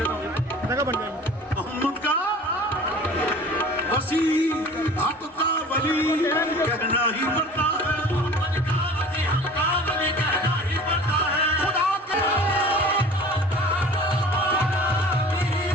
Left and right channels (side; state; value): both; normal; correlation 0.43